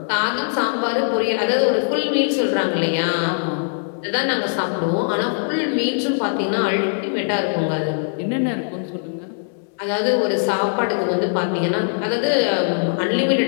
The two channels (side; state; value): right; silent; digital silence